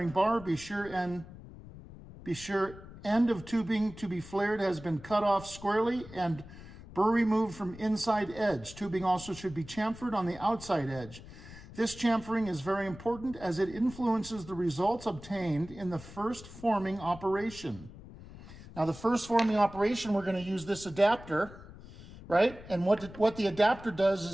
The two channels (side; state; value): left; noise; rumble, 16 dB below the sound